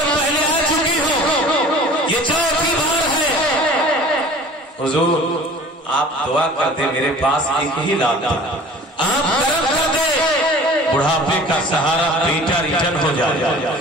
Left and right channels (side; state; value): both; normal; correlation 0.45